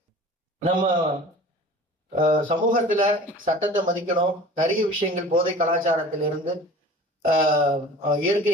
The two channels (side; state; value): both; normal; correlation 0.42